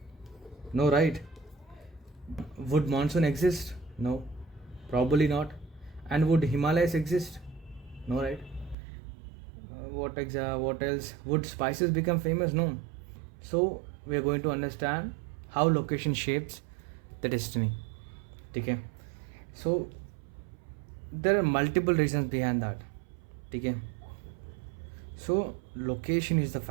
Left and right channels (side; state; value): left; drops out; at 8.8 s